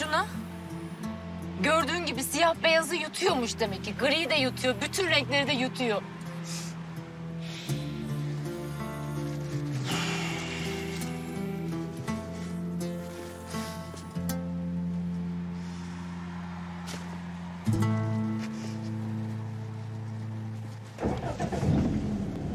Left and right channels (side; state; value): both; identical; correlation 1.00